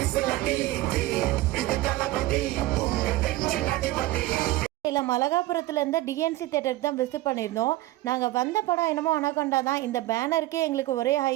இல்லை, மலகாபுரத்தில் இருந்த டிஎன்சி தேட்டருக்கு தான் விசிட் பண்ணியிருந்தோம். நாங்கள் வந்த படம் என்னமோ அனகொண்டா தான். இந்த பேனருக்கே எங்களுக்கு ஒரே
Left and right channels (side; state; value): left; quieter; 17.3 dB